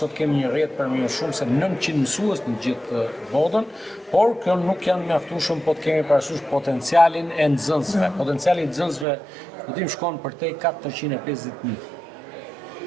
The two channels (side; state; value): left; drops out; at 9.1 s